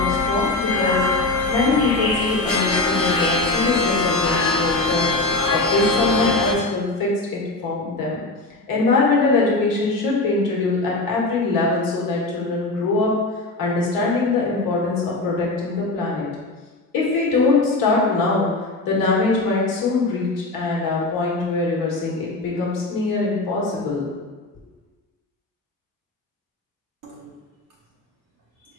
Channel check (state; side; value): quieter; right; 3.0 dB